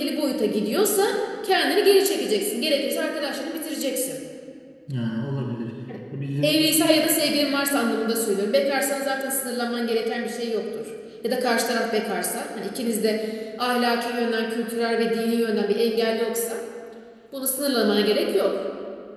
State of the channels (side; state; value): both; identical; correlation 1.00